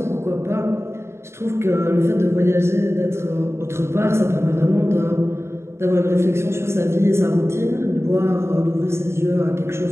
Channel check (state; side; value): late; left; 0.13 ms